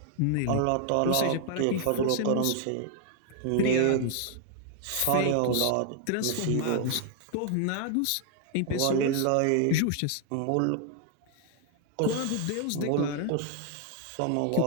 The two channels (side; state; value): both; different; correlation 0.00